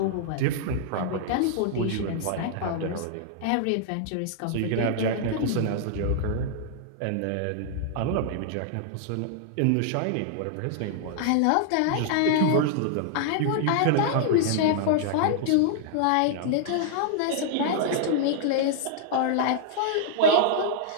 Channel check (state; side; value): different; both; correlation -0.01